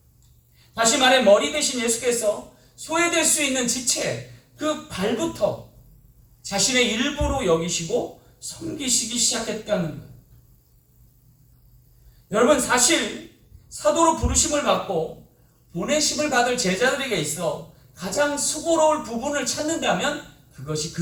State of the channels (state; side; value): identical; both; correlation 1.00